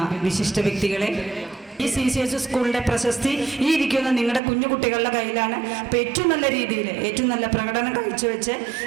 വിശിഷ്ട വ്യക്തികളെ, ഈ CCS സ്കൂളിൻ്റെ പ്രശസ്തി ഈ ഇരിക്കുന്ന നിങ്ങളുടെ കുഞ്ഞു കുട്ടികളുടെ കയ്യിലാണ്. അപ്പോൾ ഏറ്റവും നല്ല രീതിയിൽ ഏറ്റവും നല്ല പ്രകടനം കാഴ്ചവെച്ച്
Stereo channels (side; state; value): left; drops out; at 4.4 s